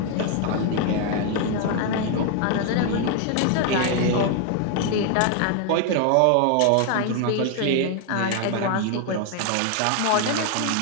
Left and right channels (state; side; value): different; both; correlation 0.00